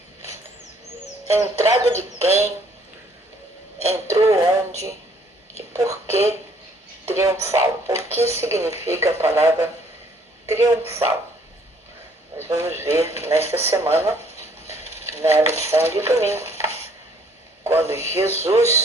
Entrada de quem? Entrou onde? E por que triunfal? O que significa a palavra triunfal? Nós vamos ver nesta semana, na lição de domingo, quando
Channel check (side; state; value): both; normal; correlation 0.62